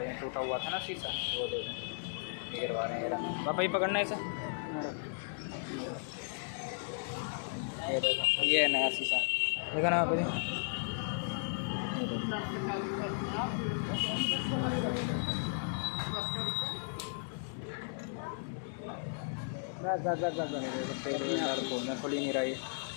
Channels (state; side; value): silent; right; digital silence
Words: हैं, टूटा हुआ था ना शीशा, वो देखो गिरवा रहे हैं। पापा ही पकड़ना है इसे, ये है नया शीशा, देखा ना पापा जी। खोलना खुल ही नहीं रहा है।